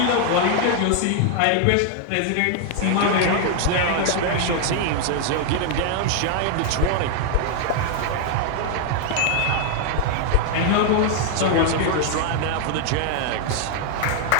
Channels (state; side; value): different; both; correlation 0.00